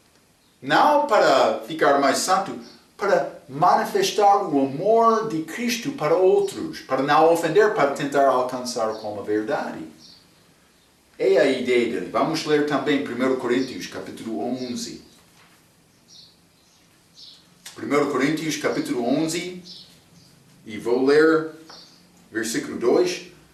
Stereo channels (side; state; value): both; identical; correlation 1.00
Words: não para ficar mais santo, para manifestar o amor de Cristo para outros, para não ofender, para tentar alcançar como a verdade. É a ideia dele. Vamos ler também 1 Coríntios, capítulo 11. 1 Coríntios, capítulo 11, e vou ler versículo 2.